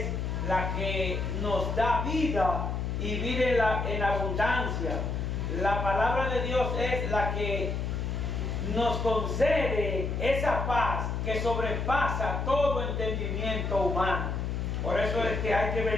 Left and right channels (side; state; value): left; noise; hum, 2 dB below the sound